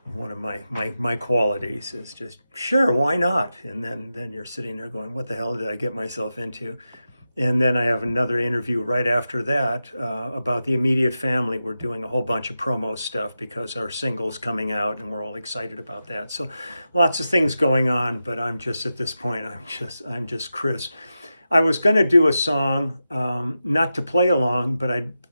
One of my qualities is just, sure, why not? And then you're sitting there going, what the hell did I get myself into? And then I have another interview right after that about the immediate family. We're doing a whole bunch of promo stuff because our single's coming out, and we're all excited about that. So lots of things going on, but I'm just at this point, I'm just Chris. I was going to do a song, not to play along, but I'd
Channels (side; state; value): both; inverted; correlation -0.91